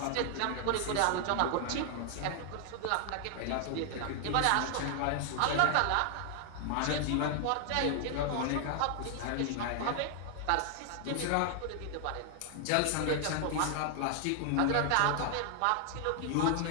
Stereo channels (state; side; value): different; both; correlation 0.00